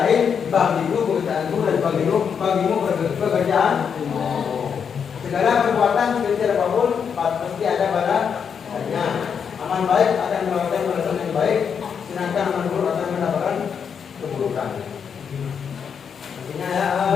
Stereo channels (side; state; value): right; quieter; 7.0 dB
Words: bagimu pekerjaanmu dan bagimu pekerjaan. Segala perbuatan sekecil apapun pasti ada balasnya. Aman baik akan mendapatkan balasan yang baik, sedangkan aman buruk akan mendapatkan keburukan. Artinya ya,